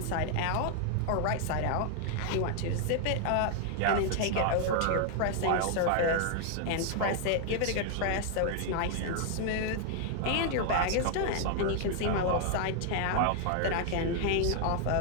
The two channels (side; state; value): both; different; correlation 0.00